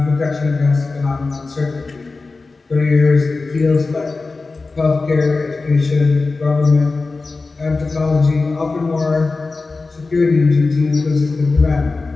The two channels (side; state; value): right; quieter; 3.8 dB